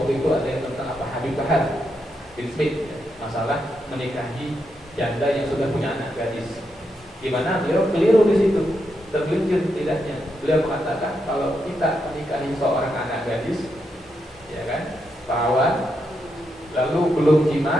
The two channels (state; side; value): normal; both; correlation 0.82